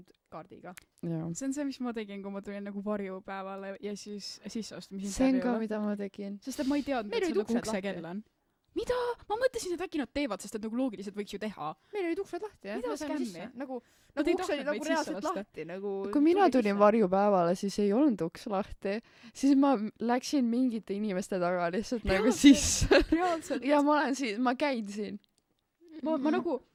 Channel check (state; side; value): identical; both; correlation 1.00